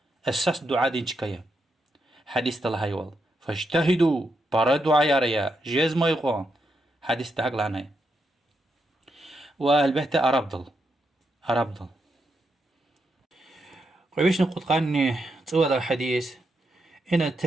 أساس دعاء دين شكاية حديث تلهاي وال فاجتهدوا برا دعاء ياريا جيز ما يقون حديث تهق لعناي والبهت أرابضل قويش نقود قاني تسوى الحديث إن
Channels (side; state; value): both; normal; correlation 0.83